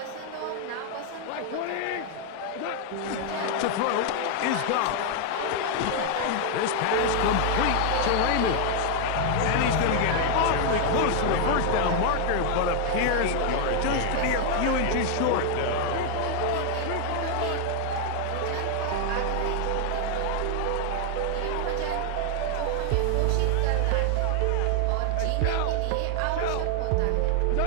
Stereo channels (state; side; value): different; both; correlation 0.00